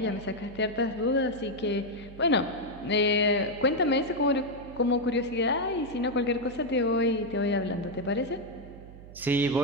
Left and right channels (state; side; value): noise; right; hum, 17 dB below the sound